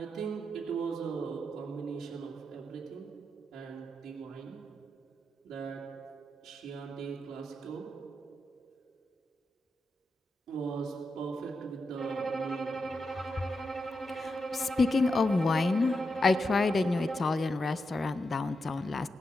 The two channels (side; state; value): both; normal; correlation 0.87